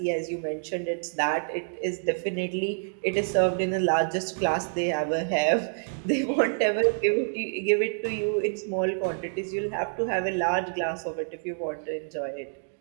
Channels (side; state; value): left; silent; digital silence